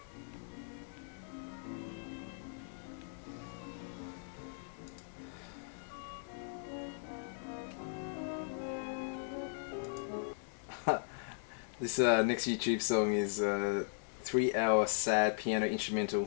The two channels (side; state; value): right; silent; digital silence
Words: This next YouTube song is 3-hour sad piano instrumental